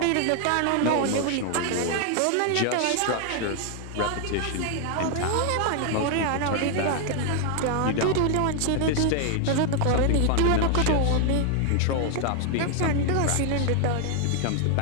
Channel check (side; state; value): both; different; correlation 0.00